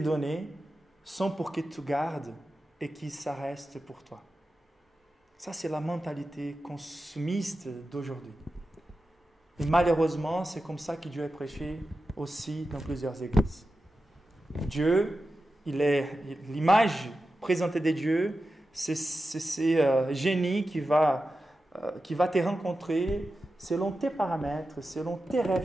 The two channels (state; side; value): normal; both; correlation 0.92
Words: sont pour que tu gardes et que ça reste pour toi. » Ça, c'est la mentalité consumiste d'aujourd'hui. Et malheureusement, c'est comme ça que Dieu est prêché aussi dans plusieurs églises. Dieu, l'image présentée de Dieu, c'est ce génie qui va te rencontrer selon tes paramètres, selon tes